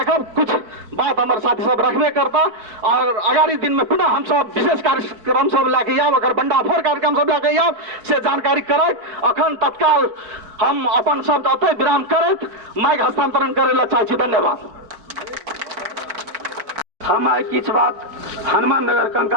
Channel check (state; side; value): late; left; 4.5 ms